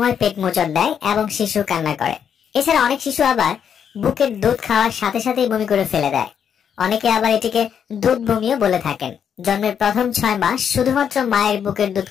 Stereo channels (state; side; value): quieter; right; 8.0 dB